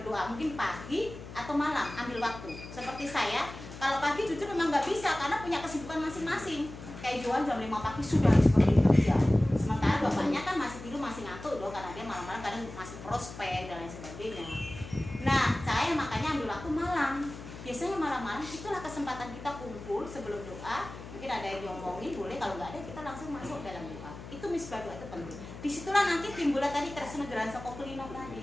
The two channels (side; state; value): left; noise; hum, 13 dB below the sound